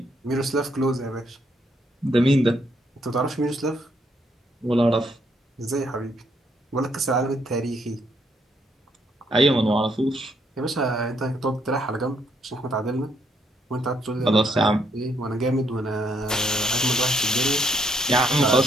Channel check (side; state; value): both; normal; correlation 0.72